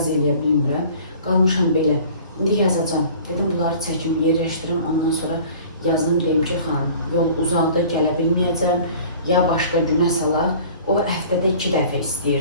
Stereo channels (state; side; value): inverted; both; correlation -0.47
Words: eləyə bilmirəm. Qalmışam belə. İndi yazacağım. Dedim, bunları çəkim, yerləşdirim. Ondan sonra yazım, deyim ki, xanım, yol uzaqdır, gələ bilməyəcəm. Ya başqa günə salaq. O həftədə 2 dəfə